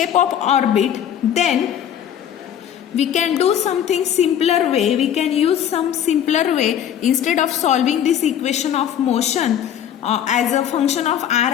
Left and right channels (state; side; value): quieter; right; 9.7 dB